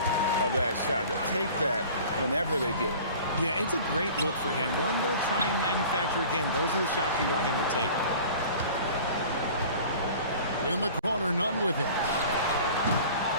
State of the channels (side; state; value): both; inverted; correlation -0.44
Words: of that shot. They'll take that whenever they get it. Yeah, it's a great look for him. One they'll try and manufacture again. Those are the shots you want him to take. In the corner, none with it.